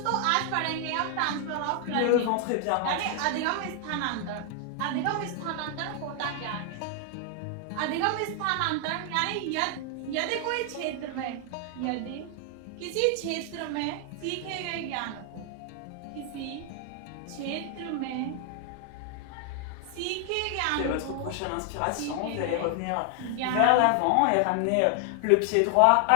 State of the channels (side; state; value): both; different; correlation 0.00